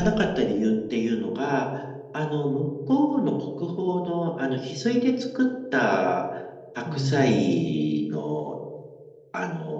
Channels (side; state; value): both; identical; correlation 1.00